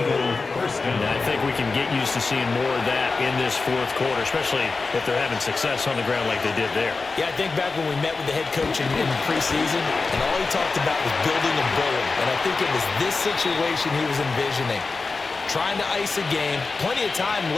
first down. I think we can get used to seeing more of that in this 4th quarter, especially if they're having success on the ground like they did there. Yeah, I think back when we met with the head coach in preseason, and all he talked about was building a bullet. And I think it was this situation he was envisioning. Trying to ice a game, plenty of time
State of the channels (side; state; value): right; quieter; 4.1 dB